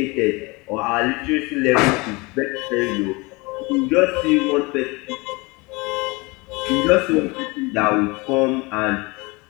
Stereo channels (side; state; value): right; quieter; 25.5 dB